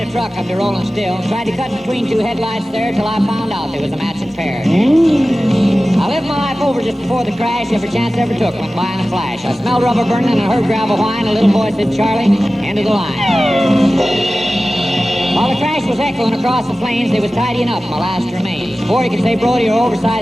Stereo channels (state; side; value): normal; both; correlation 0.96